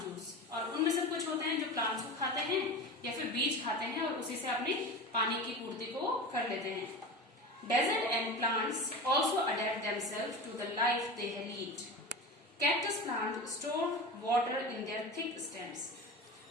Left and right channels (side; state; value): both; normal; correlation 0.29